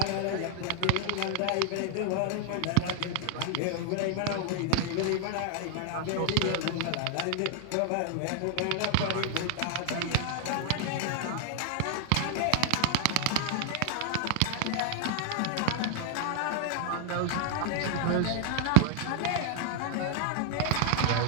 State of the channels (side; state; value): both; different; correlation 0.00